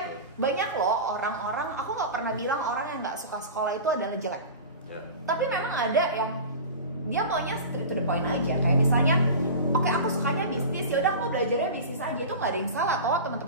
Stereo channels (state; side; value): inverted; both; correlation -0.32